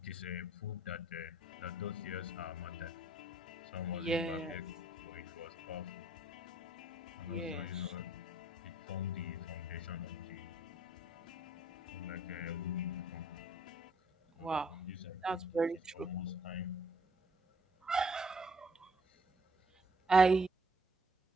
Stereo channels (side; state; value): both; normal; correlation 0.64